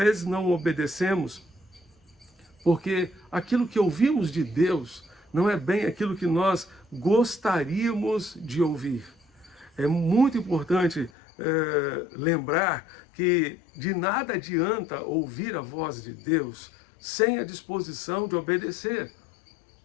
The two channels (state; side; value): drops out; right; at 11.1 s